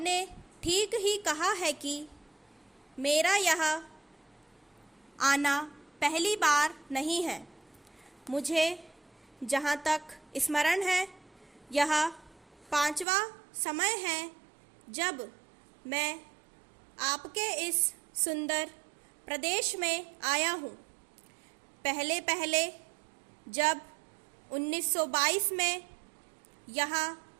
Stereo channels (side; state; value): left; drops out; at 13.1 s